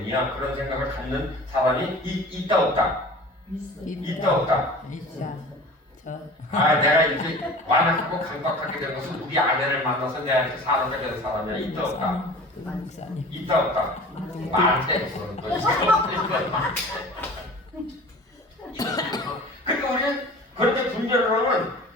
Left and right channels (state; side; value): normal; both; correlation 0.41